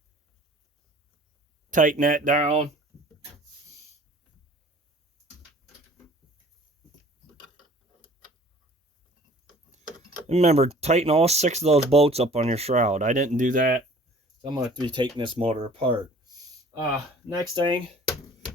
Tighten that down. Remember, tighten all 6 of those bolts up on your shroud. I didn't do that. I'm going to have to be taking this motor apart. Next thing,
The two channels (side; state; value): both; normal; correlation 0.50